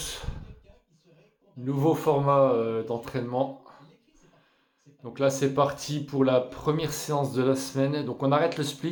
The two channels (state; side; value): identical; both; correlation 1.00